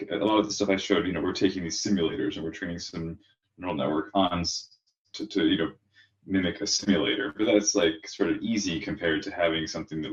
a lot of the stuff I showed, you know, we're taking these simulators and we're training some neural network on to you know, mimic a simulator, but that's like sort of easy compared to having something that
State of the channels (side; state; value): both; identical; correlation 1.00